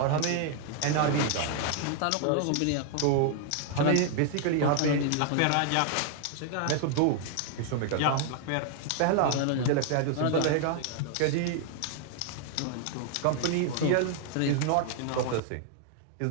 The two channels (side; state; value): both; different; correlation 0.00